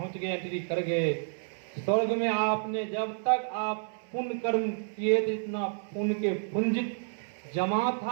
गए, एंट्री कर गए। स्वर्ग में आपने जब तक आप पुण्य कर्म किए, जितना पुण्य के पुंजित जमा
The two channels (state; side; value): silent; left; 57 dB below the other